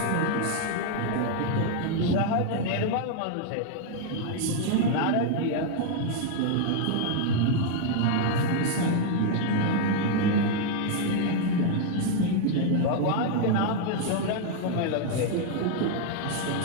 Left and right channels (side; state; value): both; different; correlation 0.00